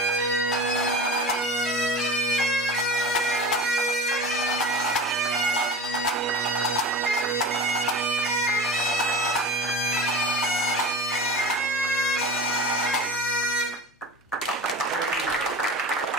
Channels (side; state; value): both; normal; correlation 0.33